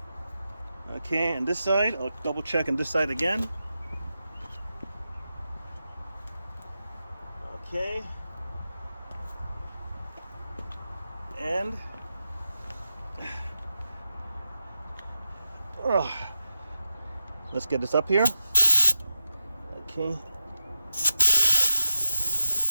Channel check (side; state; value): both; inverted; correlation -0.91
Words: Okay, and this side, I'll double check on this side again. Okay. And let's get this up here. Okay.